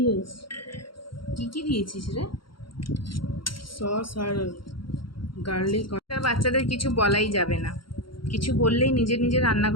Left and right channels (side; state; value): right; late; 0.73 ms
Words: হয়েছে। কি কি দিয়েছিস রে? সস আর গার্লিক। বাচ্চাদের কিছু বলাই যাবে না, কিছু বললেই নিজে নিজে